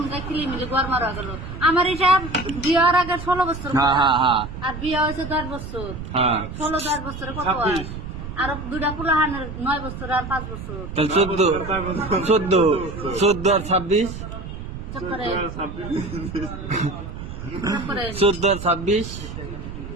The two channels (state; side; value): noise; right; rumble, 9 dB below the sound